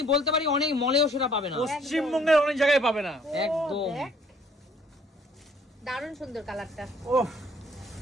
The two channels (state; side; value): normal; both; correlation 0.60